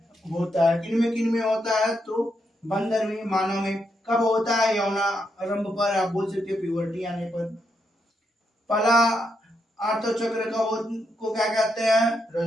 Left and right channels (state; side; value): normal; both; correlation 0.81